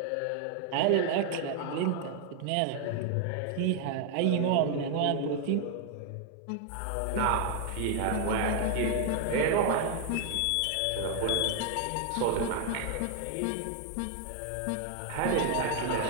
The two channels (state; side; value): different; both; correlation 0.00